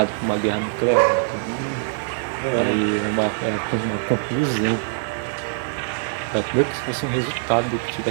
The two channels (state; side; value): silent; left; digital silence